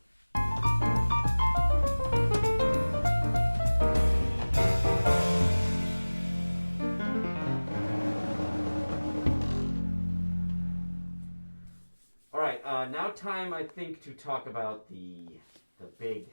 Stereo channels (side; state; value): both; inverted; correlation -1.00